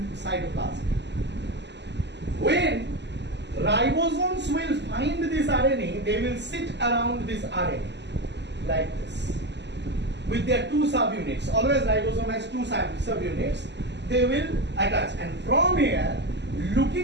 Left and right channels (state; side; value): late; left; 0.51 ms